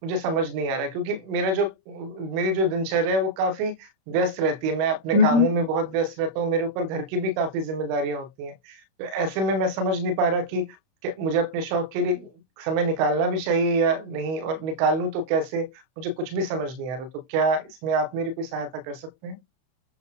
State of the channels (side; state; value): left; late; 31 ms